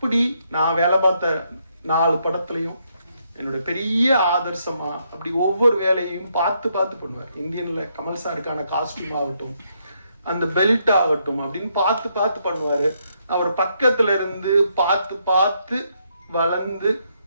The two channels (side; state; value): both; inverted; correlation -0.76